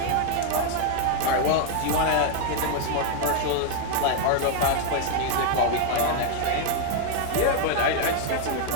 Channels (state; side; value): different; both; correlation 0.00